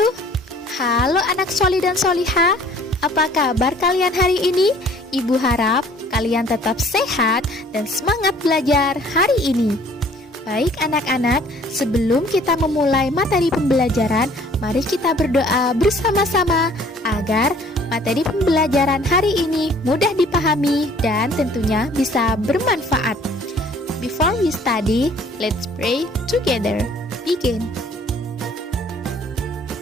Halo anak soli dan soliha, apa kabar kalian hari ini? Ibu harap kalian tetap sehat dan semangat belajar hari ini. Baik anak-anak, sebelum kita memulai materi pembelajaran, mari kita berdoa bersama-sama agar materi pembelajaran hari ini mudah dipahami dan tentunya bisa bermanfaat. Before we study, let's pray together. Begin.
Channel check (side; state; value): both; normal; correlation 0.55